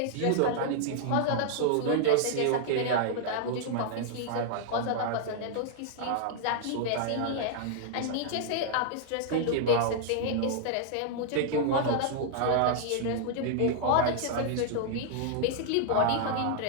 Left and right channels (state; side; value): different; both; correlation 0.00